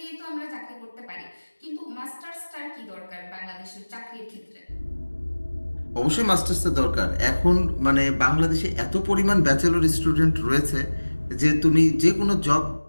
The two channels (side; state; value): both; inverted; correlation -1.00